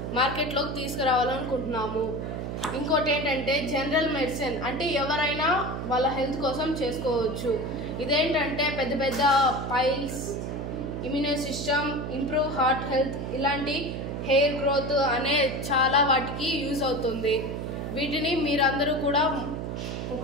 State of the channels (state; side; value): noise; right; hum, 5 dB below the sound